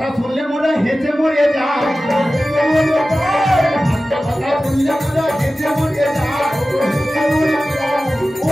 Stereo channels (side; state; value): both; normal; correlation 0.95